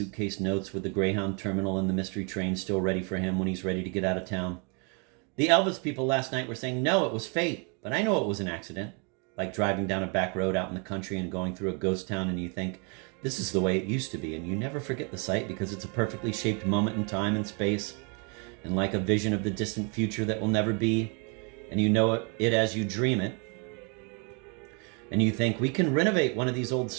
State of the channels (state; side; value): quieter; left; 34.9 dB